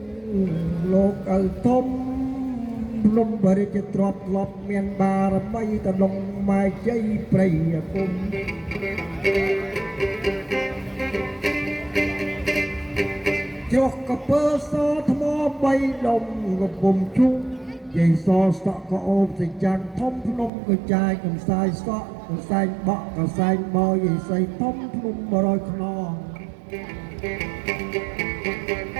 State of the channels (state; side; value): drops out; left; at 20.5 s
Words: លោកឪធំភ្នំបរិជ្ជទ្រព្យធ្លាប់មានបារមីតលងម៉ែជ័យព្រៃគុំជ្រោះកពើសថ្មបីដុំកំពុំជុំយាយសសក់ក៏អូបសេចក្ដីធំភ្នំក៏ចាយកំសាយសក់កំសែងបក់កំសែងបោយាយសីធំភ្នំ100ខ្នង